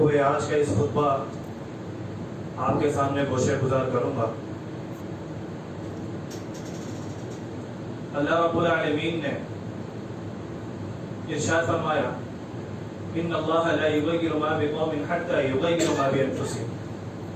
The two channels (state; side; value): identical; both; correlation 1.00